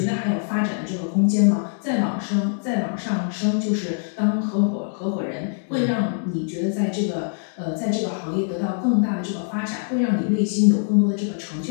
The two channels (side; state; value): right; silent; digital silence